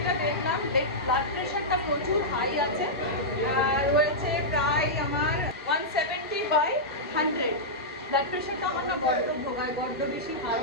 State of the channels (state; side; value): normal; both; correlation -0.11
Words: দেখলাম, ব্লাড প্রেশারটা প্রচুর হাই আছে, রয়েছে প্রায় আমার 170/100। ব্লাড প্রেশারটা আমার না বড্ড ভোগায়, বড্ড বেশি হাই